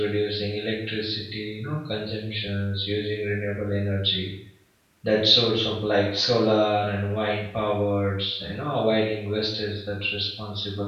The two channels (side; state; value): both; identical; correlation 1.00